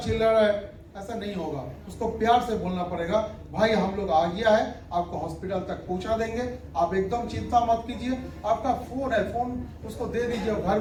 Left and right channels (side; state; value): both; identical; correlation 1.00